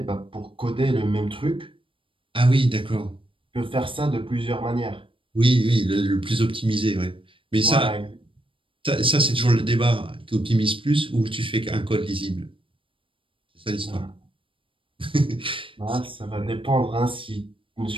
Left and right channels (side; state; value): left; late; 0.25 ms